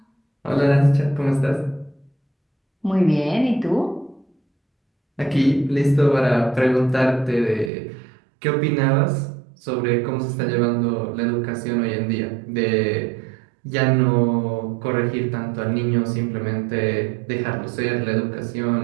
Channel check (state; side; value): drops out; left; at 7.7 s